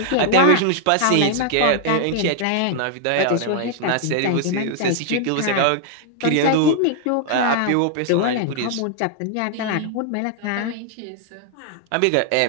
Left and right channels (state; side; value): different; both; correlation 0.00